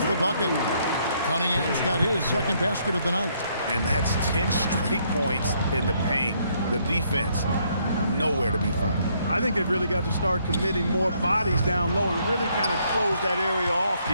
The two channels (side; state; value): both; inverted; correlation -0.70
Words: the bucket. Cunningham's got his second basket of the night. And that's 10 straight points in the paint. The defense, nowhere to be found. I think they've really got to start committing more bodies down low and really kind of close that area off